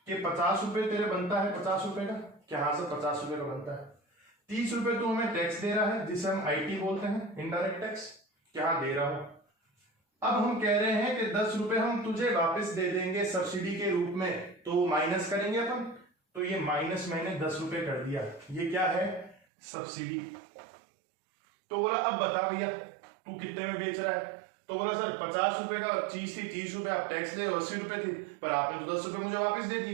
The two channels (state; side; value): drops out; left; at 19.4 s